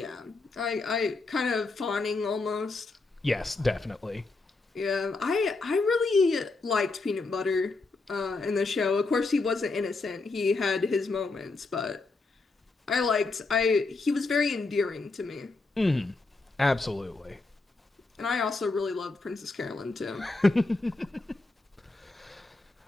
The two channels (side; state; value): right; quieter; 3.6 dB